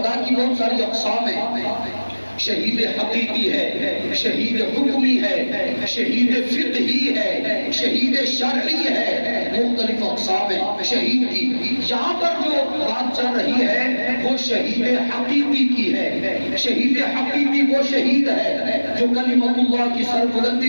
کی بہت ساری اقسام ہیں، شہید حقیقی ہے، شہید حکمی ہے، شہید فقہی ہے، شہید شرعی ہے، مختلف اقسام ہیں شہید کی۔ یہاں پر جو بات چل رہی ہے وہ شہید حقیقی کی ہے۔ شہید حقیقی وہ شہید ہے جو کلمۃ اللہ کی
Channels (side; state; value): both; inverted; correlation -1.00